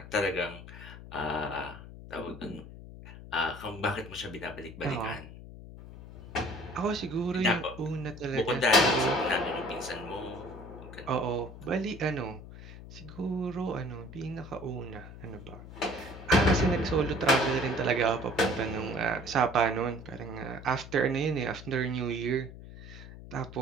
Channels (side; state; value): left; noise; hum, 14 dB below the sound